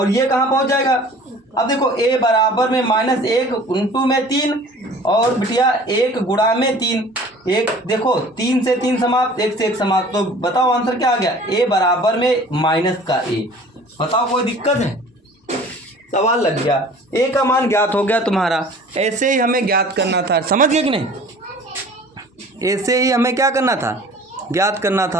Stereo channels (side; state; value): both; normal; correlation 0.47